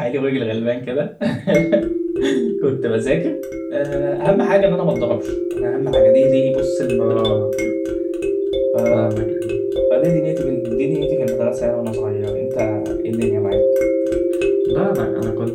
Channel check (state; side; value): identical; both; correlation 1.00